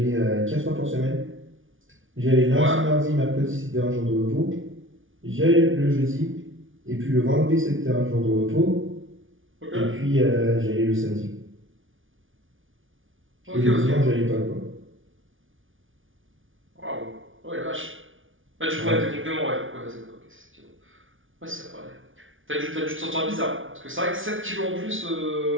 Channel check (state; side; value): late; left; 0.57 ms